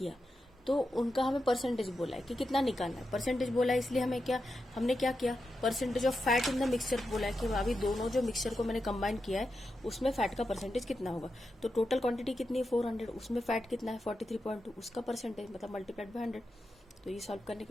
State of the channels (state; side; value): normal; both; correlation 0.88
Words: तो उनका हमें परसेंटेज बोला है कि कितना निकालना है। परसेंटेज बोला है इसलिए हमने क्या किया, percentage of fat in the mixture बोला है कि अभी दोनों जो मिक्सचर को मैंने कंबाइन किया है उसमें फैट का परसेंटेज कितना होगा। तो टोटल क्वांटिटी कितनी है, 400, उसमें फैट कितना है, 43.2, उसका परसेंटेज मतलब मल्टीप्लाइड बाय 100। तो ये सॉल्व करने